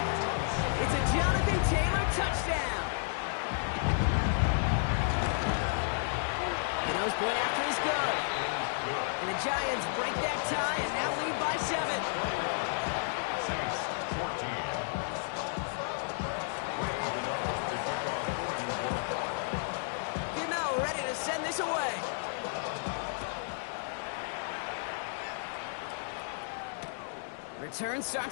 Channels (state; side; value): silent; right; digital silence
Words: It's a Jonathan Taylor touchdown. The nose point after is good. And the Giants break that tie and now lead by 7. Saints 14. Ready to send this away. Return